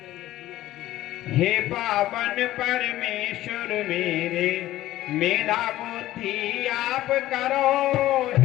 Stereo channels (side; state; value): right; quieter; 15.0 dB